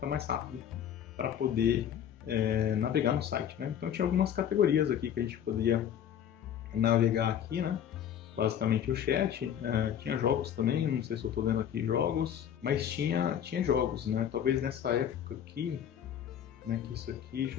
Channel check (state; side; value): quieter; right; 9.4 dB